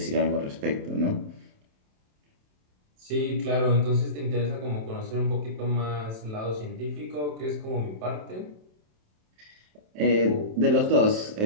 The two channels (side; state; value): left; late; 27 ms